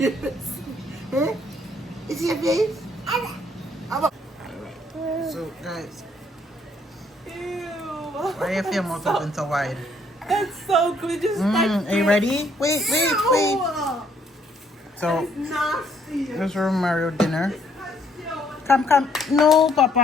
Huh? Is your face? So guys. Ew. Why you feel mouth open so wide? That's so good. Just Are you ready? Wait. No. So It's nasty. this is Mario dinner. Come. No,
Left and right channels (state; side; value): normal; both; correlation 0.67